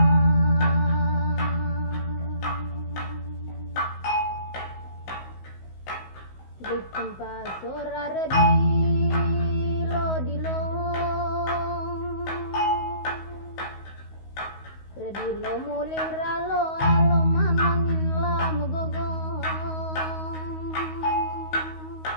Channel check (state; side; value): late; right; 16 ms